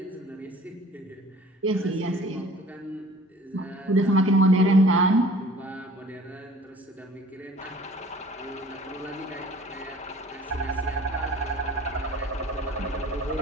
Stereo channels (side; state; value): both; normal; correlation 0.49